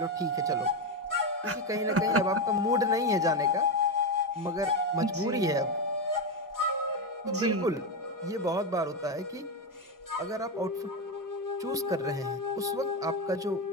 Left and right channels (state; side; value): normal; both; correlation 0.11